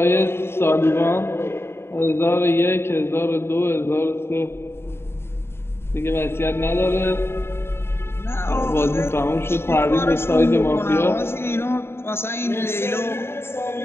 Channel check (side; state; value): right; late; 0.12 ms